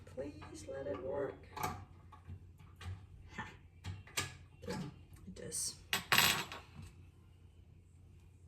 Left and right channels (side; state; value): both; identical; correlation 1.00